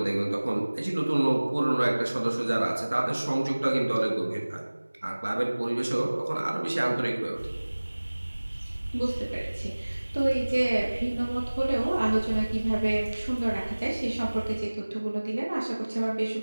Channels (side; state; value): both; inverted; correlation -1.00